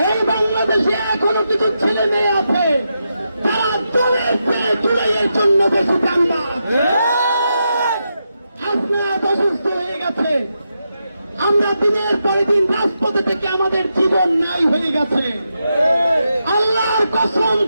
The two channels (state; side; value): inverted; both; correlation -0.86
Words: এই বাংলাদেশে এখনো কিছু ছেলে মেয়ে আছে তারা দলের চেয়ে জুলাইয়ের জন্য বেশি কান্না। আপনারা অসুস্থ হয়ে গেছে, আমরা দিনের পরে দিন রাজপথে থেকে আমাদের জীবন নাই হয়ে গেছে। আল্লাহর কসম